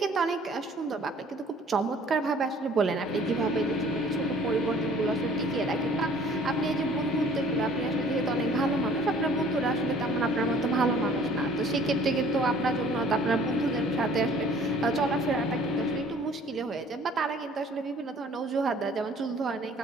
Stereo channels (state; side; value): normal; both; correlation 0.53